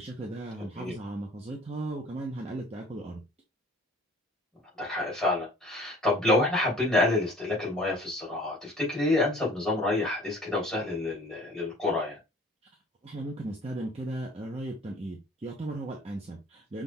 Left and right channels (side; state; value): both; normal; correlation 0.50